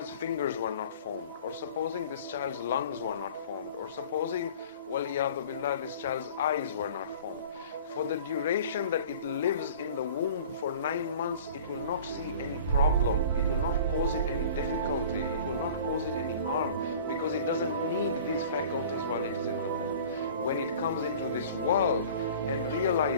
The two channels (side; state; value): both; inverted; correlation -0.44